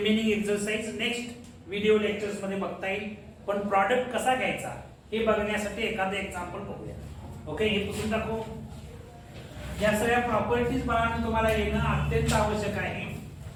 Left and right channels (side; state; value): both; identical; correlation 1.00